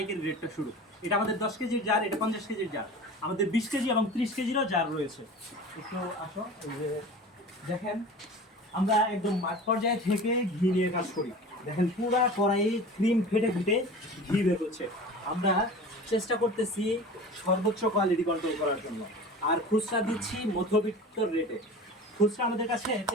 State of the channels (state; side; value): normal; both; correlation 0.37